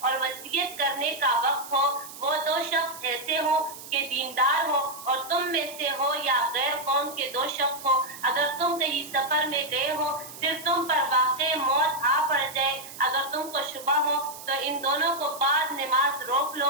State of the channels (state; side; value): noise; right; hiss, 14 dB below the sound